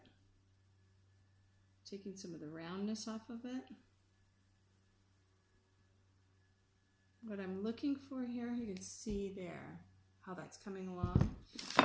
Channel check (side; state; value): both; identical; correlation 1.00